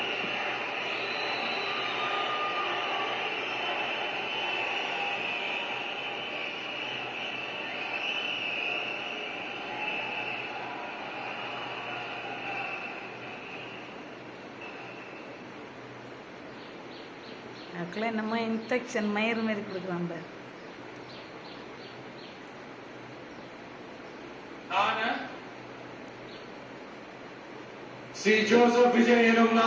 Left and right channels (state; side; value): identical; both; correlation 1.00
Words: அதுக்குள்ள என்னமோ இன்ஃபெக்ஷன் மயிறு மாரி கொடுக்குறான் பாரு. சி ஜோசப் விஜய் எனும்